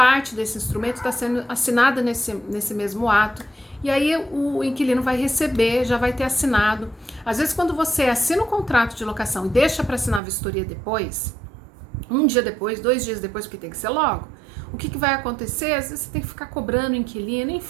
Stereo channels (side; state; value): left; drops out; at 10.2 s